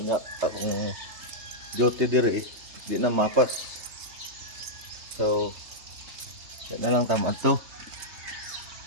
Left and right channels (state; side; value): late; left; 3.3 ms